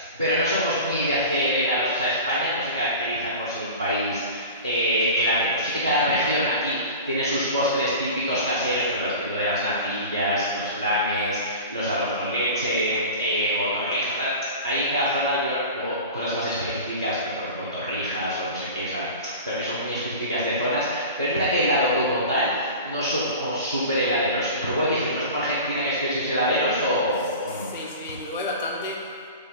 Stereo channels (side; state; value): both; inverted; correlation -0.33